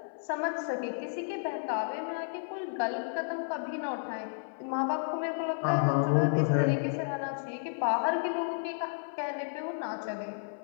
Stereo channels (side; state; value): right; silent; 56 dB below the other